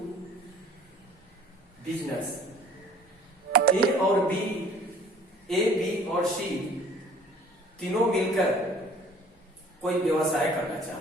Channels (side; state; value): both; normal; correlation 0.52